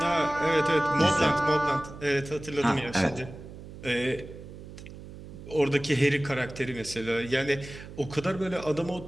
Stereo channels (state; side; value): noise; right; hum, 14 dB below the sound